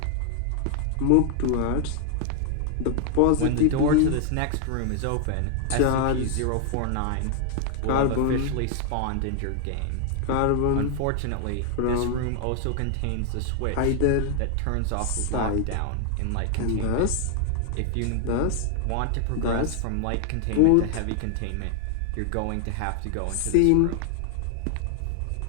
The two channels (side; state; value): both; different; correlation 0.00